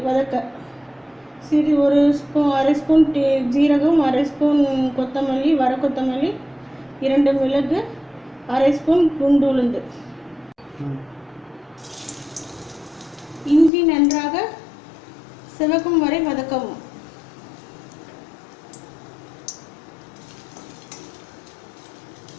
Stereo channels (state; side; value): drops out; right; at 13.7 s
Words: வதக்க ஒரு ஸ்பூன், அரை ஸ்பூன் ஜீரகம், அரை ஸ்பூன் கொத்தமல்லி, வர கொத்தமல்லி, 2 மிளகு, அரை ஸ்பூன் குண்டு உளுந்து. இஞ்சி நன்றாக சிவக்கும் வரை வதக்கவும்.